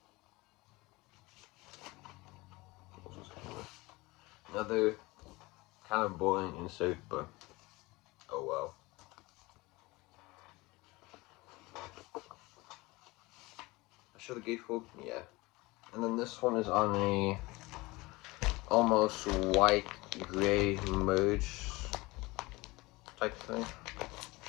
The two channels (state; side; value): quieter; right; 22.2 dB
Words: Another kind of boring insert, but oh well. I show the gatefold? Yeah. And then this one is on a almost white gray merge type thing.